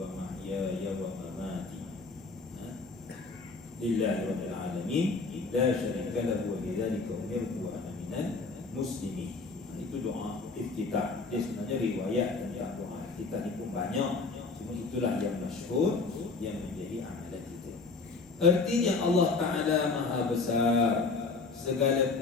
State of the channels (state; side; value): quieter; right; 4.1 dB